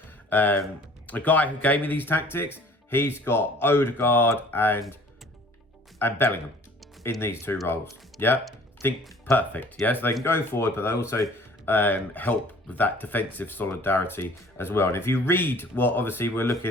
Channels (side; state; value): both; normal; correlation 0.51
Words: The guy who gave me these tactics, he's got Odegaard and Bellingham in these 2 roles. Yeah, think perfect. Yeah, so they can go forward, but they also help with that defensive solidarity as well. And if you read what obviously we're